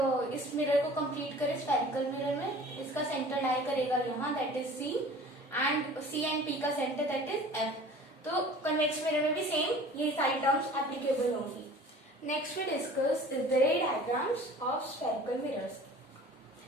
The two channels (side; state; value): both; normal; correlation 0.45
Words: इस मिरर को कंप्लीट करें स्फेरिकल मिरर में, इसका सेंटर लाई करेगा यहाँ, that is C, and C and P का सेंटर दैट इज F. तो कन्वेक्स मिरर में भी सेम ये सारी टर्म्स एप्लीकेबल होंगी. Next we discuss is the ray diagrams of spherical mirrors.